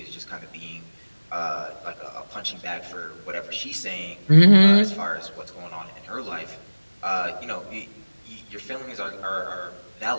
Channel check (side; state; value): both; inverted; correlation -1.00